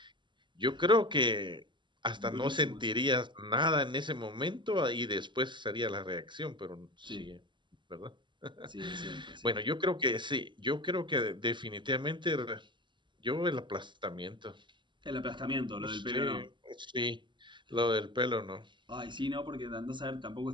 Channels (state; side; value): late; left; 0.23 ms